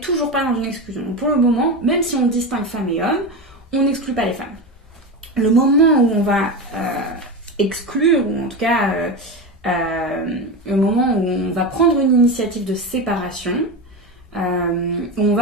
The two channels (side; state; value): both; normal; correlation 0.20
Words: pas dans une exclusion. Donc pour le moment, même si on distingue femmes et hommes, on n'exclut pas les femmes. Le moment où on va exclure, ou en tout cas le moment où on va prendre une initiative de séparation, où on